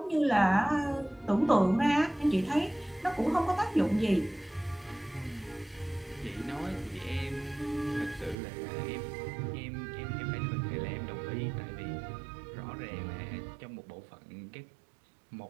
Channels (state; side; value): drops out; left; at 8.3 s